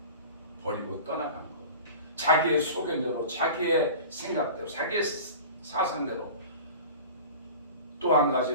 버리고 떠나간 것, 자기의 소견대로, 자기의 생각대로, 자기의 사상대로. 또 한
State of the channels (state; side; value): inverted; both; correlation -0.38